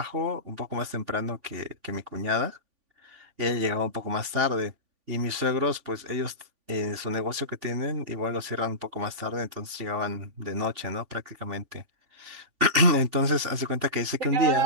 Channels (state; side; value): late; left; 3.5 ms